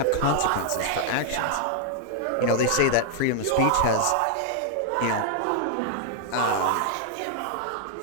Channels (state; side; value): different; both; correlation -0.01